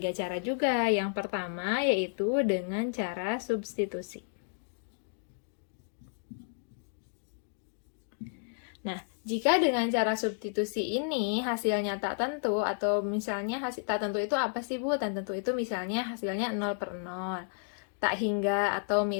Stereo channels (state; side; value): silent; right; digital silence